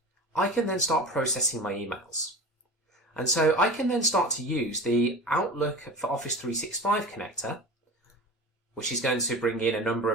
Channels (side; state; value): both; normal; correlation 0.33